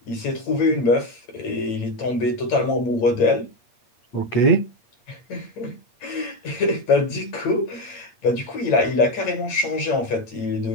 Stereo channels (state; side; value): late; right; 8.8 ms